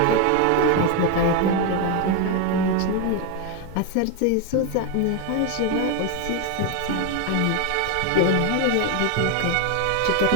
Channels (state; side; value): different; both; correlation 0.02